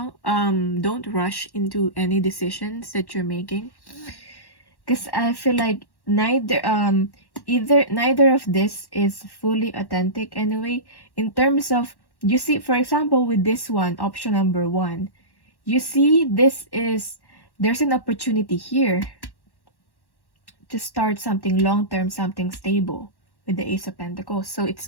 Don't rush into any decisions that you're making. Because I feel like neither of this is fully authentic anyway. In terms of, you see, for example, with this one, option number 1, you see there's an opportunity here to start something long-term, something stable with the Ace of Pentacles. So it's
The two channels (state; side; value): late; right; 1.1 ms